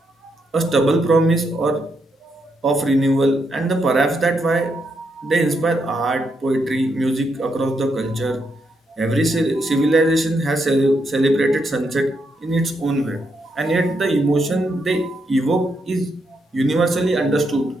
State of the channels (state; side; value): normal; both; correlation 0.80